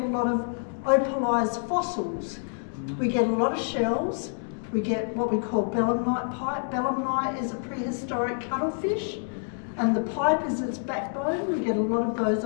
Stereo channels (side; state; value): right; silent; digital silence